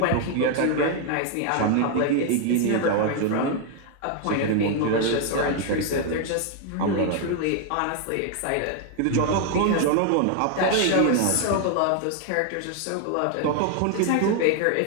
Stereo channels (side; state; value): both; different; correlation 0.00